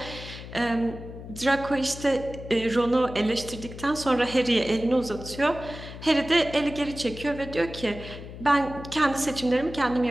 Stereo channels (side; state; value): left; noise; hum, 12 dB below the sound